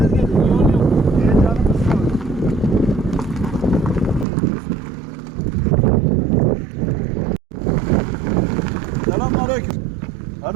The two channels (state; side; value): drops out; left; at 4.2 s